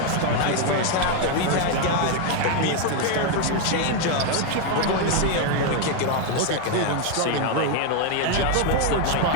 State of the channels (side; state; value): both; different; correlation 0.01